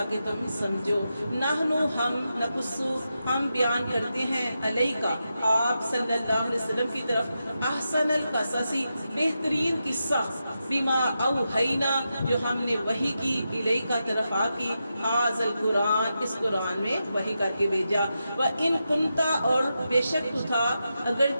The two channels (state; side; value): inverted; both; correlation -0.88